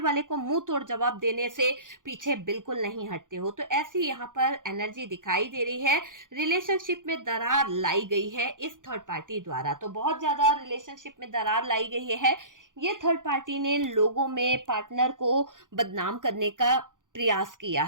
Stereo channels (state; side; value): late; left; 0.88 ms